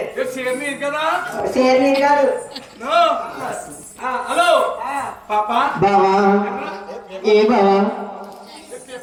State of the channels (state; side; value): identical; both; correlation 1.00